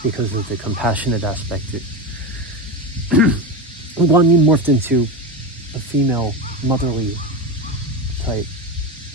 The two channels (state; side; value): normal; both; correlation 0.19